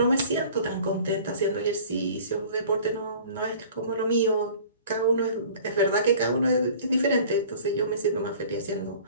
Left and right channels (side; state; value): both; inverted; correlation -0.46